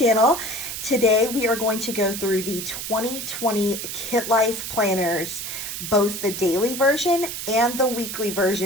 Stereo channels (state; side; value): noise; right; hiss, 6 dB below the sound